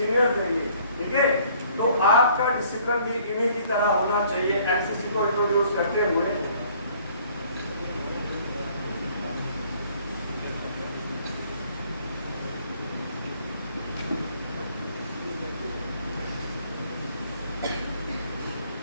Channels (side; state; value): both; inverted; correlation -0.59